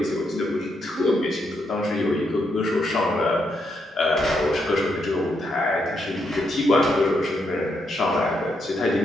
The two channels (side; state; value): both; normal; correlation 0.79